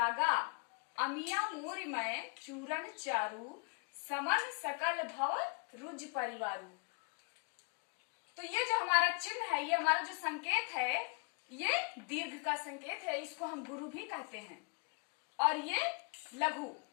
अमिया मूरिमय चूरन चारु, समन सकल भव रुज परिवारु। तो ये जो हमारा चिन्ह है, ये हमारा जो संकेत है, ये दीर्घ का संकेत है, इसको हम गुरु भी कहते हैं। और ये लघु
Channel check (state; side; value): quieter; right; 39.8 dB